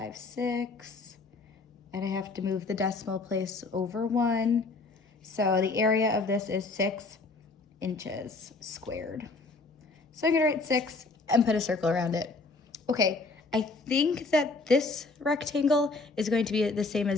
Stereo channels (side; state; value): right; quieter; 3.7 dB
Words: 6. And I have to move the decimal place over 1. So the area of this is 6 inches squared. So I'm gonna write 6 and put a circle around it. Okay, I think that this rectangle is going to be the same